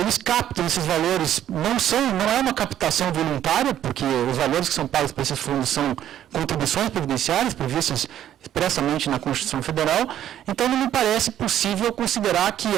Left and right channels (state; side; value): quieter; left; 11.2 dB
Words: captam esses valores, não é uma captação voluntária, porque os valores que são pagos para esses fundos são contribuições previdenciárias previstas expressamente na Constituição Federal, então não me parece possível considerar que